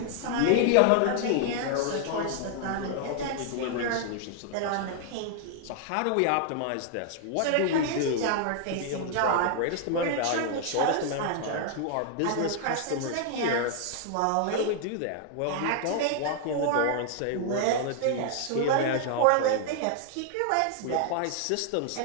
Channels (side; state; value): both; different; correlation 0.00